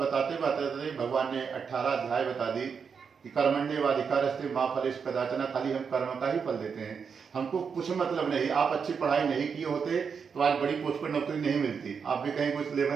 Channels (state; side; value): quieter; left; 6.2 dB